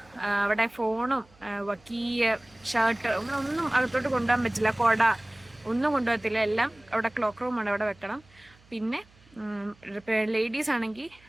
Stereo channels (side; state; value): right; noise; hum, 28 dB below the sound